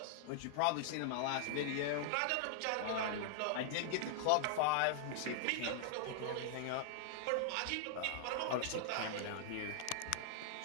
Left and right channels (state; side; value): different; both; correlation -0.01